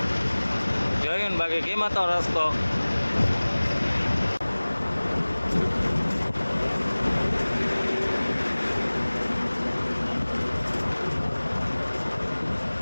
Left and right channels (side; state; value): both; inverted; correlation -1.00